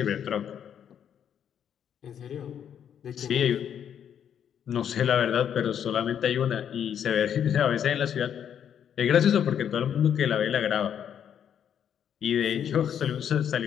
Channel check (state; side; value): quieter; right; 8.9 dB